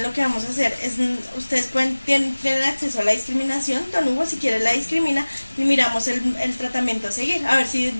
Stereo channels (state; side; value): inverted; both; correlation -1.00